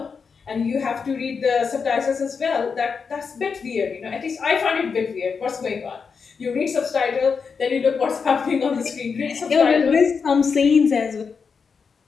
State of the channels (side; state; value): right; quieter; 5.6 dB